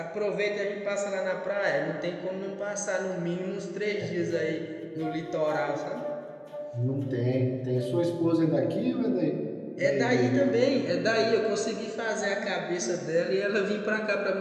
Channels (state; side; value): identical; both; correlation 1.00